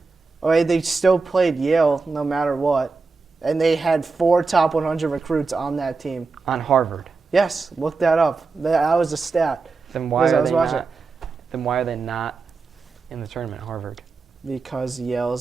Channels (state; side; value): quieter; left; 4.3 dB